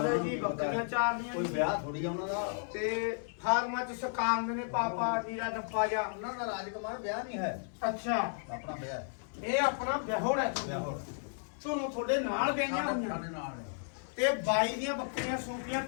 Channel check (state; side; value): silent; right; 55 dB below the other